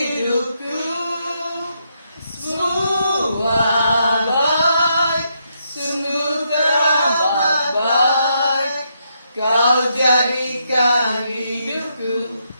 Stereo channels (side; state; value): both; inverted; correlation -0.78